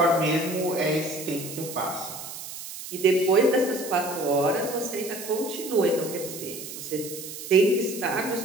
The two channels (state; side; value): noise; right; hiss, 10 dB below the sound